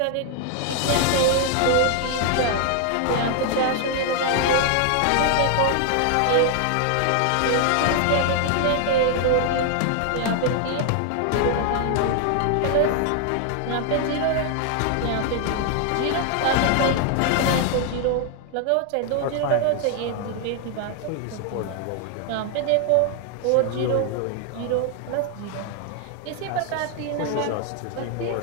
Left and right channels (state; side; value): different; both; correlation 0.00